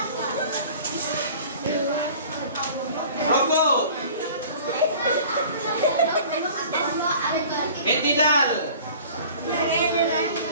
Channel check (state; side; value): inverted; both; correlation -0.45